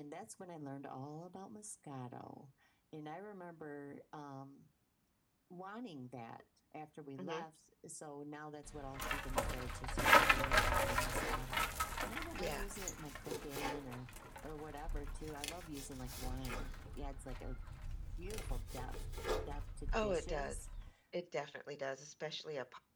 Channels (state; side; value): identical; both; correlation 1.00